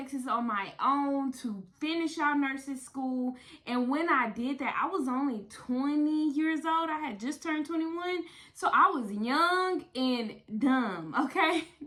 on my own to finish out nursing school. And when I did that, I was only 20 years old. I had just turned 21. So I was young and dumb, okay?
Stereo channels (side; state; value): both; identical; correlation 1.00